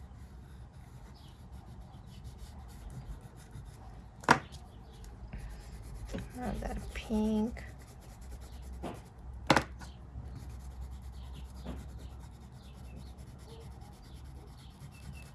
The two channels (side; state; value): both; identical; correlation 1.00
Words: Add that pink.